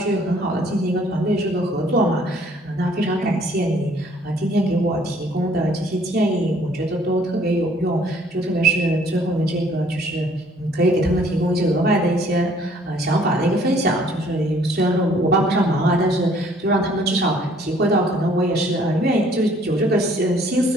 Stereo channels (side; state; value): both; normal; correlation 0.60